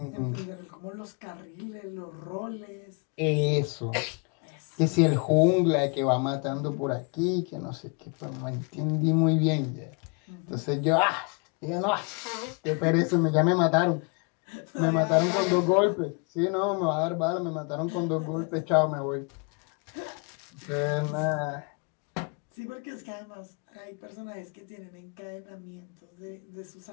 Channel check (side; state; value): right; quieter; 34.0 dB